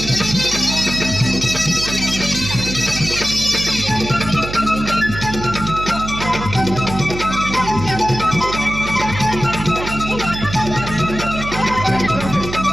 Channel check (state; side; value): noise; right; hum, 8 dB below the sound